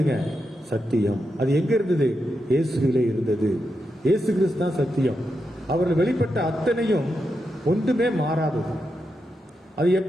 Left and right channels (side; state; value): both; normal; correlation 0.86